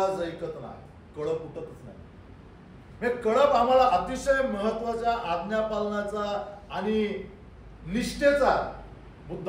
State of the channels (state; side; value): identical; both; correlation 1.00